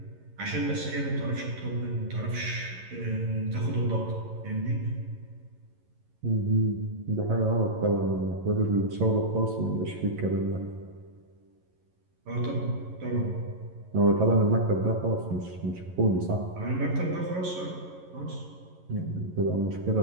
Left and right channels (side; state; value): left; late; 11 ms